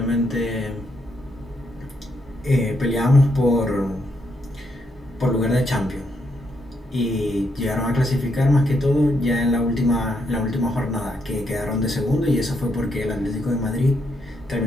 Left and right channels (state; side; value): normal; both; correlation 0.78